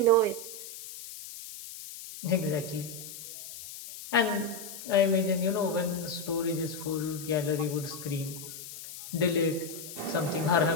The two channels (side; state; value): left; noise; hiss, 12 dB below the sound